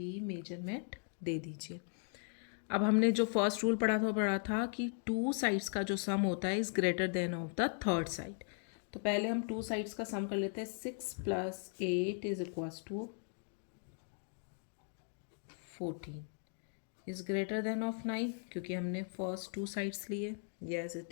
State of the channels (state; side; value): silent; right; 52 dB below the other